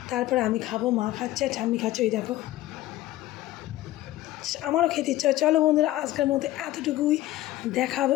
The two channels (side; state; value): right; quieter; 15.6 dB